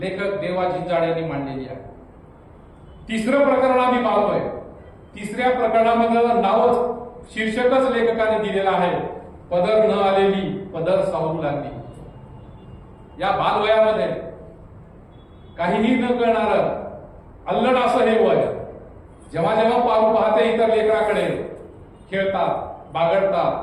देवा जिंजाड्यांनी मांडलेली आहे. तिसरं प्रकरण आम्ही पाहतोय. तिसऱ्या प्रकरणामध्ये नावच, शीर्षकच लेखकाने दिलेलं आहे, पदर न आलेली पदर सावरू लागली. या बालवयामध्ये काहीही न करणार अल्लड असं हे वय. जेव्हा जेव्हा पारू पाहते इतर लेकराकडे, खेळतात,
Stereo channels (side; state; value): both; identical; correlation 1.00